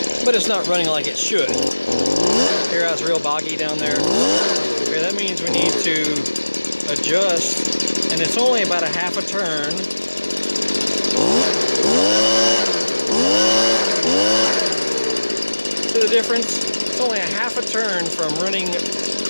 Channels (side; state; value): both; inverted; correlation -1.00